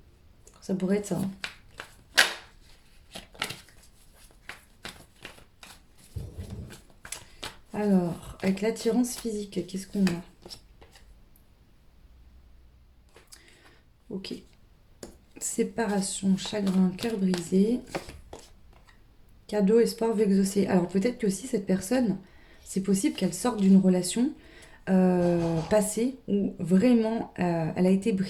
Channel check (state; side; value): identical; both; correlation 1.00